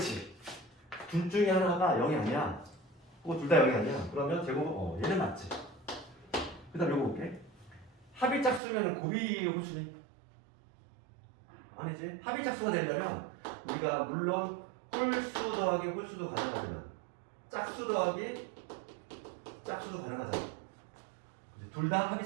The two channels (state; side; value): drops out; left; at 8.6 s